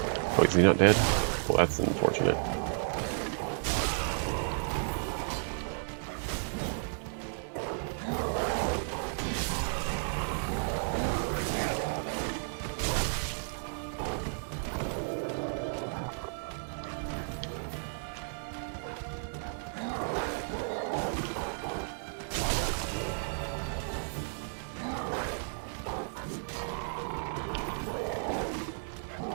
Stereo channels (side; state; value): left; silent; 56 dB below the other